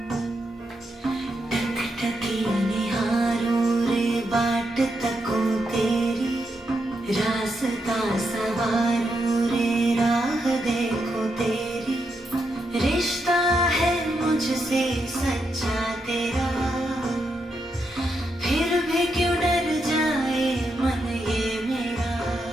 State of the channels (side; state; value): both; normal; correlation 0.82